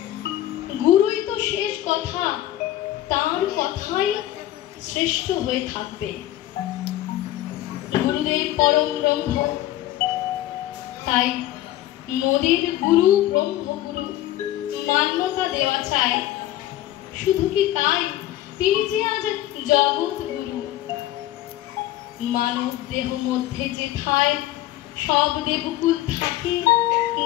গুরুই তো শেষ কথা, তার কথাই শ্রেষ্ঠ হয়ে থাকবে। গুরুদেব পরম ব্রহ্ম, তাই মোদের গুরু ব্রহ্মগুরু মান্যতা দেওয়া চাই। শুধু কি তাই, তিনি যে আজ জগৎ গুরু। মানব দেহ মধ্যে যেথায় সব দেবকুল থাকে,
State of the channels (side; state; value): right; quieter; 14.4 dB